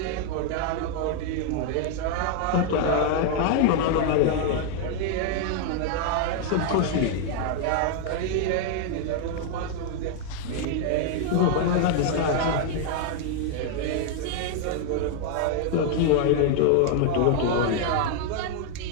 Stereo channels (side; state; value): both; different; correlation 0.00